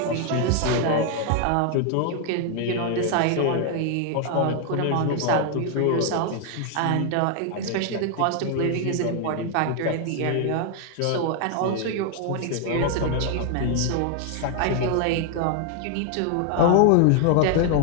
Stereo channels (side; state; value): both; different; correlation 0.00